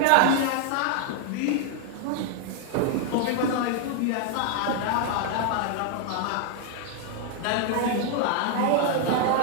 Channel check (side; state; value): both; different; correlation 0.00